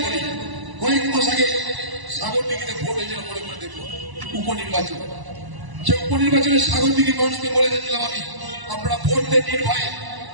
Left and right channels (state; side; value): late; left; 1.0 ms